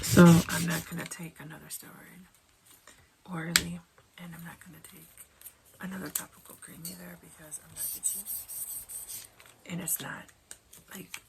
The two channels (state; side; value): identical; both; correlation 1.00